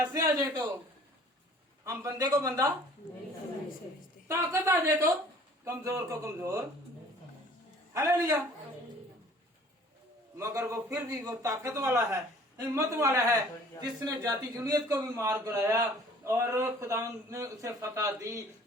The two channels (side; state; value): both; normal; correlation 0.52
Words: आ जाए तो हम बंदे को बंदा, ताकत आ जाए तो कमजोर को कमजोर। हालेलुया। मगर वो फिर भी वो ताकत वाला है, हिम्मत वाला है, जिसने जाति जुनियत को भी मार गिराया और खुदावंद ने उसे फतह दी,